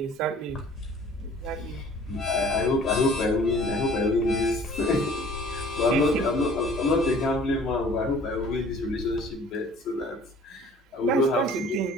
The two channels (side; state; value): both; normal; correlation 0.51